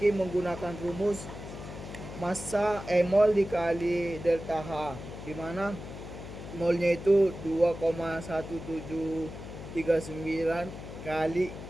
menggunakan rumus massa mol dikali delta H, di mana molnya itu 2,1739 kali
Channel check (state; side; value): noise; left; hum, 11 dB below the sound